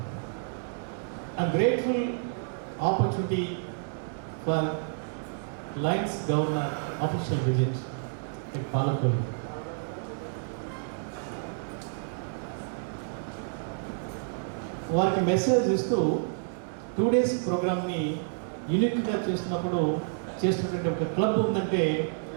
I'm grateful opportunity for Lions Governor official visit at Palakollu. వారికి మెసేజ్ ఇస్తూ 2 days ప్రోగ్రామ్ని యూనిక్గా చేస్తున్నప్పుడు చేస్తున్నటువంటి ఒక క్లబ్ ఉందంటే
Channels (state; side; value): silent; left; digital silence